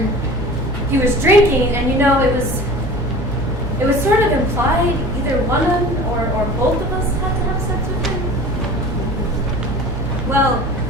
he was drinking, and you know, it was sort of implied either one of them or both of us had to have sex with him. Well,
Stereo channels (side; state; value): left; noise; hum, 9 dB below the sound